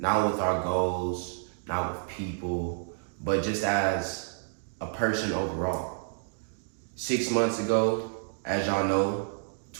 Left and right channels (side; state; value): left; silent; digital silence